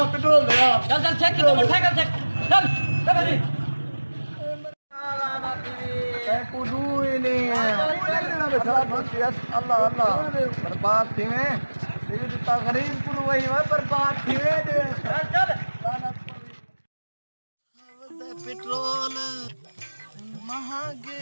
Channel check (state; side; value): inverted; both; correlation -1.00